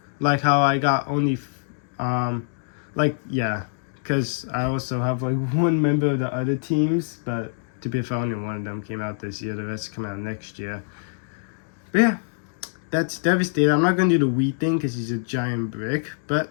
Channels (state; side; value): silent; right; digital silence